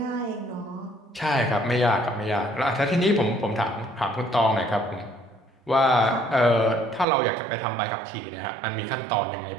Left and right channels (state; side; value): drops out; left; at 7.1 s